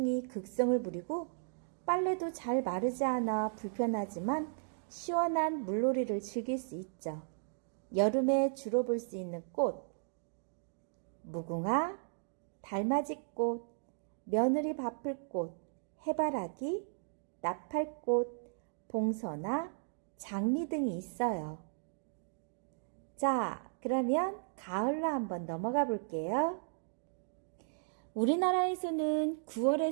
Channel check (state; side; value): silent; left; digital silence